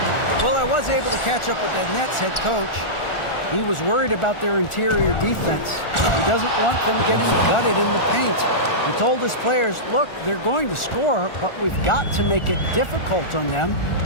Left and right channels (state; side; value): late; right; 1.4 ms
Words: Well, I was able to catch up with the Nets head coach. He was worried about their interior defense. He doesn't want them getting gutted in the paint. He told his players, look, they're going to score, but we've got to make it difficult on them